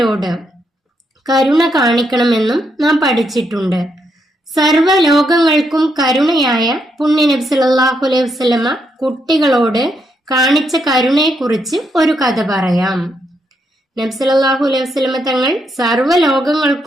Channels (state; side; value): normal; both; correlation 0.78